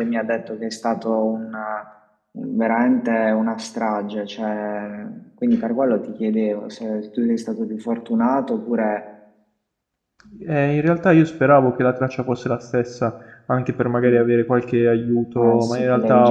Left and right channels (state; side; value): identical; both; correlation 1.00